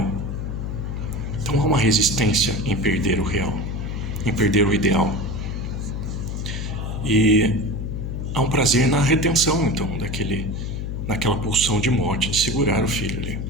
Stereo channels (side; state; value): left; noise; hum, 4 dB below the sound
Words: Então há uma resistência em perder o real, em perder o ideal. E há um prazer na retenção, então, naquela pulsão de morte, de segurar o filho ali.